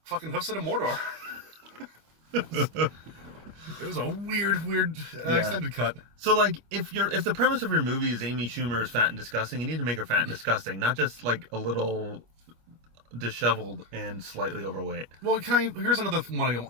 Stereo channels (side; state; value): left; late; 25 ms